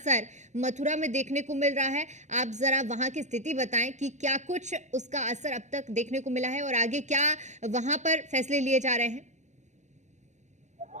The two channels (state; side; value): late; left; 0.34 ms